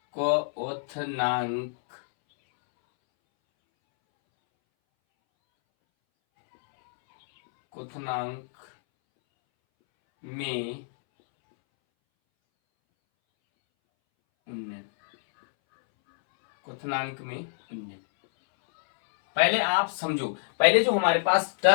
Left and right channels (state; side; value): silent; right; 61 dB below the other